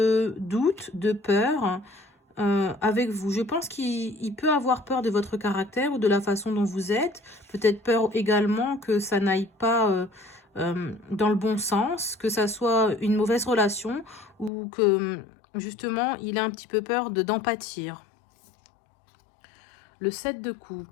doute, de peur avec vous. Je pense qu'il peut avoir peur de votre caractère ou de la façon dont vous êtes. Peut-être peur également que ça n'aille pas dans le bon sens, que ça soit une mauvaise relation ou que justement il a un petit peu peur d'en pâtir. Le 7 de coupe.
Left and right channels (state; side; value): drops out; right; at 14.5 s